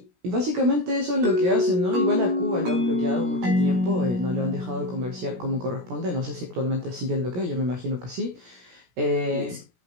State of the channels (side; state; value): left; late; 17 ms